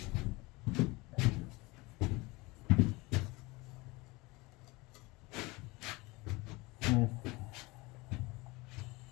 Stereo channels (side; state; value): right; quieter; 23.6 dB